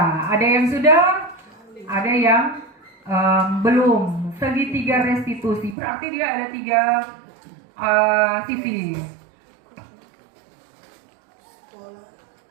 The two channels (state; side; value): drops out; left; at 5.8 s